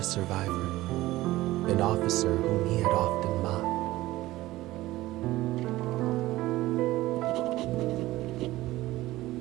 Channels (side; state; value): left; quieter; 17.2 dB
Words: survivor, an officer whom he had often mocked.